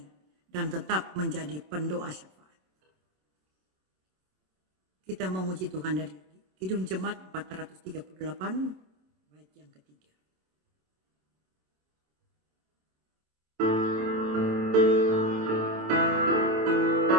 dan tetap menjadi pendoa syafaat. Kita memuji Tuhan dari Kidung Jemaat 438, bait yang ketiga.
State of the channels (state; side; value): late; left; 27 ms